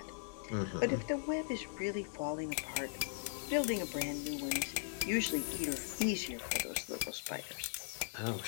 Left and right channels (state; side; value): silent; right; digital silence